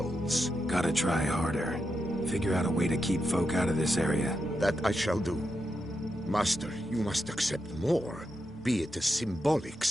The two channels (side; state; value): both; normal; correlation 0.86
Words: Gotta try harder. Figure out a way to keep folk out of this area. That I shall do. Master, you must accept more, be it a symbolic